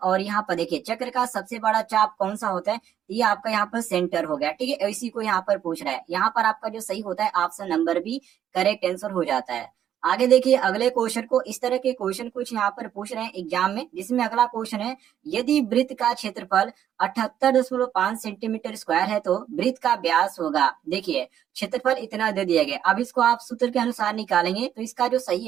और यहाँ पर देखिए चक्र का सबसे बड़ा चाप कौन सा होता है? ये आपका यहाँ पर सेंटर हो गया, ठीक है, इसी को यहाँ पर पूछ रहा है। यहाँ पर आपका जो सही होता है option number B correct answer हो जाता है। आगे देखिए अगले क्वेश्चन को, इस तरह के क्वेश्चन कुछ यहाँ पर पूछ रहे हैं एग्जाम में, जिसमें अगला क्वेश्चन है, यदि वृत्त का क्षेत्रफल 78.5 सेंटीमीटर स्क्वायर है, तो वृत्त का व्यास होगा। देखिए क्षेत्रफल इतना दे दिया गया, अब इसको आप सूत्र के अनुसार निकालेंगे तो इसका जो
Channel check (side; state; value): left; quieter; 10.2 dB